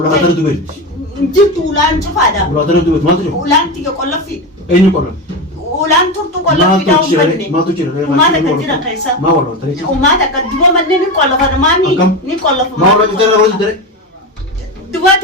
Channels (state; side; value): normal; both; correlation 0.18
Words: ada itu ber. jitu ulan chufada Ulah ada itu ber. Mana tu? ulan tiga kollafi Ini korang. ulan turtu kollafi Ma daun tu cire, banne ma tu cire. umata kan jira kaisa Ma walau tadi. umata kan duba manne ni kollafa mani Akam. ni kollafa Ma walau kita rawat tadi. duba